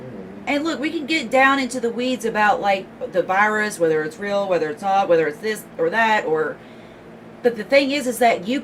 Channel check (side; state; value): both; identical; correlation 1.00